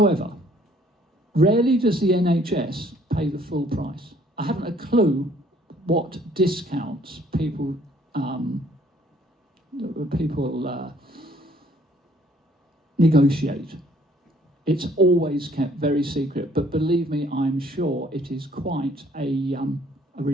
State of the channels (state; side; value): normal; both; correlation 0.61